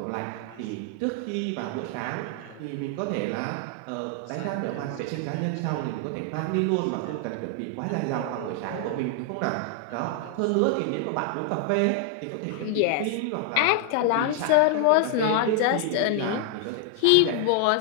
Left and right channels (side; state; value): both; different; correlation 0.00